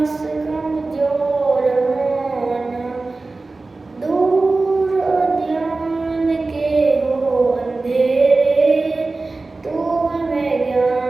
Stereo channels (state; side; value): quieter; left; 3.5 dB